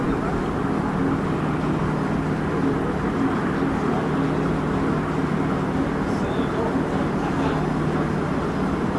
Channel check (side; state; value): both; identical; correlation 1.00